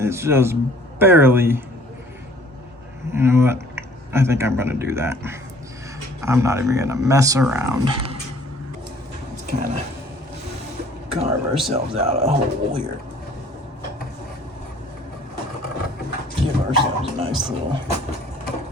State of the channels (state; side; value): normal; both; correlation 0.55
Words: just barely, you know what? I think I'm going to do that. I'm not even going to mess around. Let's kind of carve ourselves out a hole here. Give ourselves a nice little